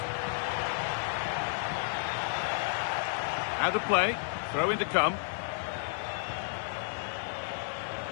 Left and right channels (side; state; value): right; silent; digital silence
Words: Out of play. Throw in to come.